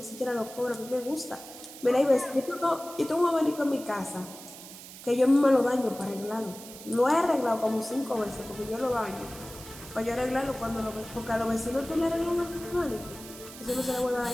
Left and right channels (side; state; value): right; noise; hiss, 15 dB below the sound